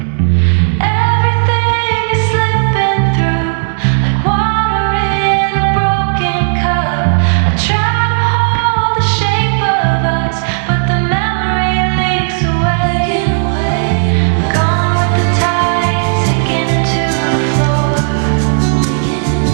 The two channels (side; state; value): left; silent; digital silence